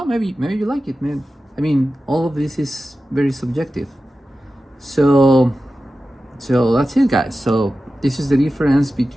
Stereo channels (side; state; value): both; normal; correlation 0.94